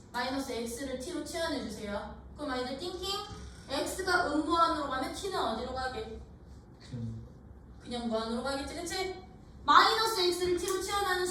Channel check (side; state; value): both; identical; correlation 1.00